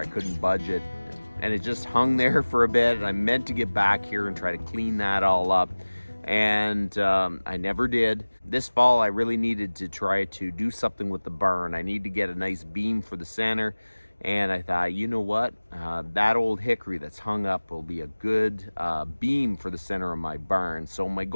couldn't budge it, and it just hung there for a bit, and I meant to get back here and try to clean that all up, and I never did. This fall I really needed to try to do something with the barn. I need to get a nice beam for the center, and I thought, you know what, that old hickory that's hung up will be a good beam for the center of my barn. So my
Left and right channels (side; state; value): both; inverted; correlation -1.00